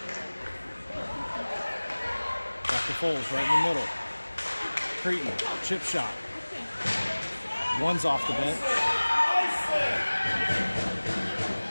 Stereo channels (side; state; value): both; inverted; correlation -1.00